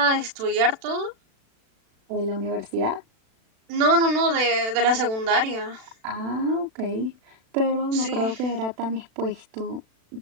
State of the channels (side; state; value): left; late; 36 ms